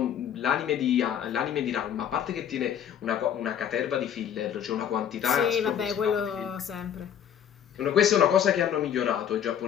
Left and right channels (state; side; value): quieter; right; 9.1 dB